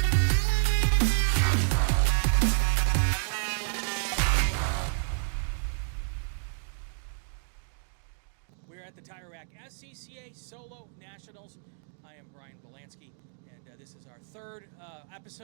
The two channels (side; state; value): left; silent; digital silence